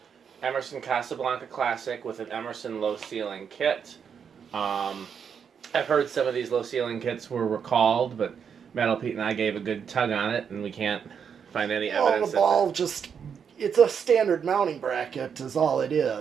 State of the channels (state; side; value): quieter; left; 7.1 dB